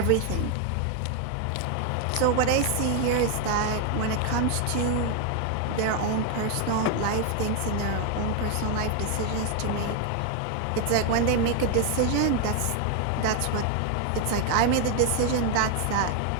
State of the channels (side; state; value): both; different; correlation 0.00